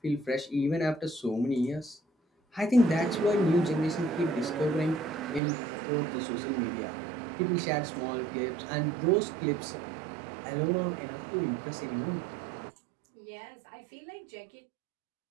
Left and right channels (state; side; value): drops out; left; at 5.4 s